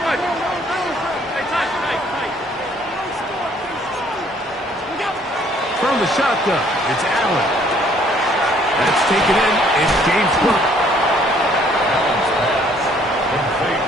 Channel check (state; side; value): normal; both; correlation 0.62